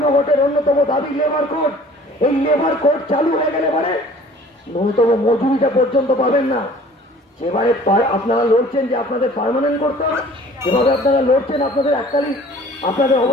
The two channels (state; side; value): normal; both; correlation 0.49